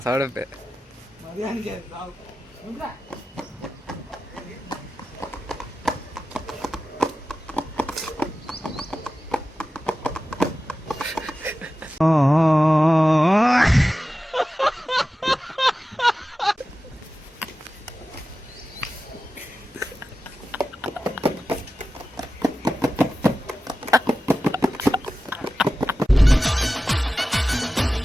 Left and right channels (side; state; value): both; normal; correlation 0.94